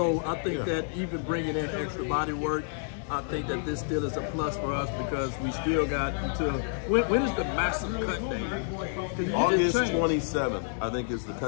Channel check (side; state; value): right; silent; digital silence